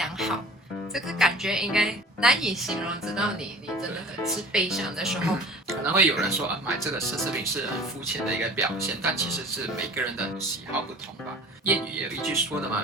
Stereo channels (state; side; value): normal; both; correlation 0.44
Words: 好。这个感觉应该难以形容，直到你真的很是悲伤的时候。可能会有人说买这个奢侈品是很肤浅的一个表现，但其实是每个人的喜好不同吧。谚语也有一句说的